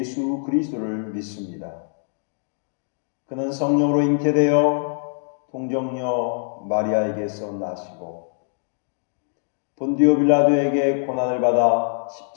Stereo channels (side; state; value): right; silent; digital silence